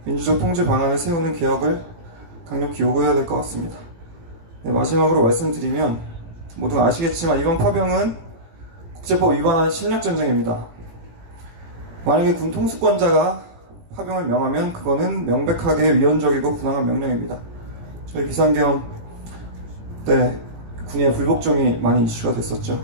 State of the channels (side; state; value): left; late; 17 ms